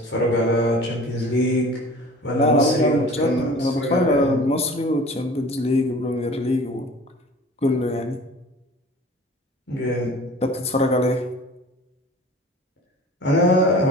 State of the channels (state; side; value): normal; both; correlation 0.44